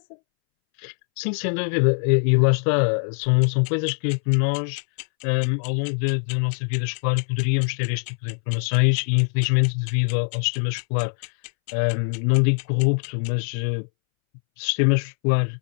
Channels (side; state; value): right; silent; 64 dB below the other